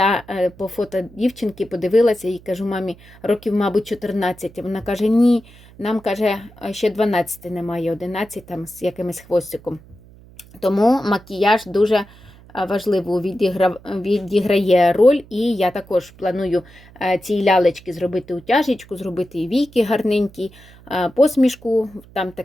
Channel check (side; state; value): right; noise; hum, 23 dB below the sound